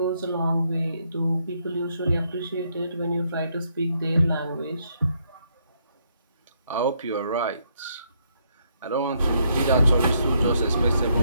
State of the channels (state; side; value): inverted; both; correlation -0.74